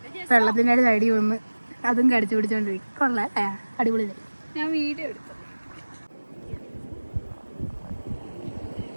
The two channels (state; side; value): inverted; both; correlation -1.00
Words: വെള്ളത്തിൻ്റെ സൈഡിൽ വന്ന് അതും കടിച്ചു പിടിച്ചോണ്ടിരിക്കും കൊള്ളാം അടിപൊളി ഞാൻ വീഡിയോ എടുത്തു